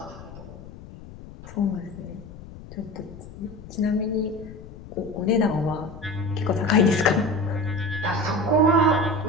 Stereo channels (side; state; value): left; noise; rumble, 16 dB below the sound